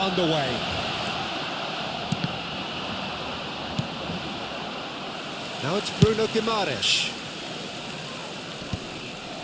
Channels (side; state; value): both; identical; correlation 1.00